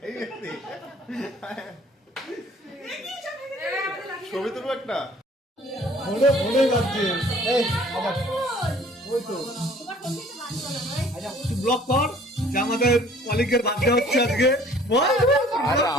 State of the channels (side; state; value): both; normal; correlation 0.54